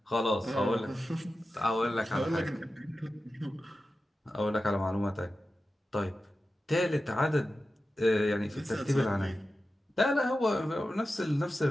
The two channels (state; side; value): normal; both; correlation 0.93